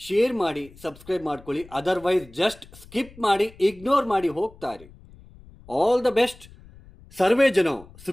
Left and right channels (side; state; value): left; noise; rumble, 22 dB below the sound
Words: ಮಾಡಿ, ಸಬ್ಸ್ಕ್ರೈಬ್ ಮಾಡ್ಕೊಳ್ಳಿ. ಅದರ್ವೈಸ್ ಜಸ್ಟ್ ಸ್ಕಿಪ್ ಮಾಡಿ, ಇಗ್ನೋರ್ ಮಾಡಿ ಹೋಗ್ತಾ ಇರಿ. All the best. ಸರ್ವೇ ಜನ